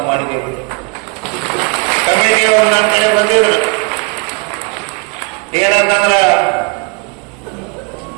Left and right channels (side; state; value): left; quieter; 31.4 dB